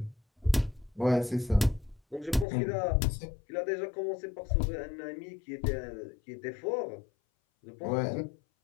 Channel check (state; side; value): drops out; right; at 2.5 s